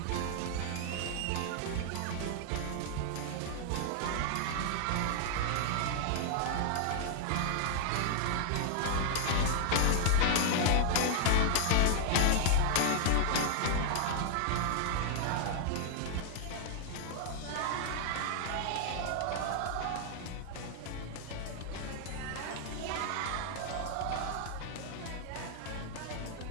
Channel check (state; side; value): different; both; correlation -0.01